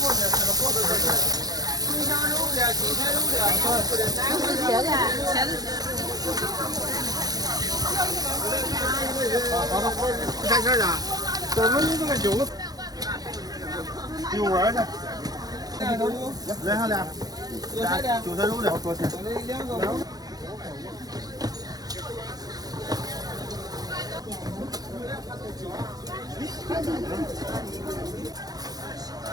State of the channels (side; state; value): left; late; 0.19 ms